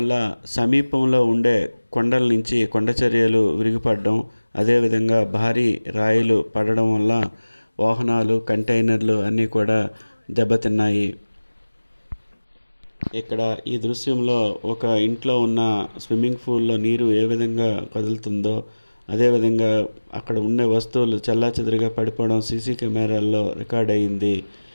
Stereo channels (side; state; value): both; inverted; correlation -1.00